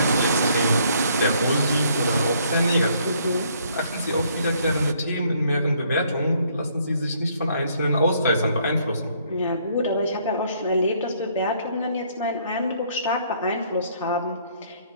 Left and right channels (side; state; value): both; inverted; correlation -0.66